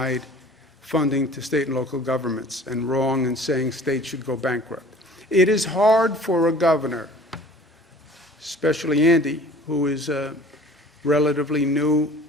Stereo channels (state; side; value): normal; both; correlation 0.47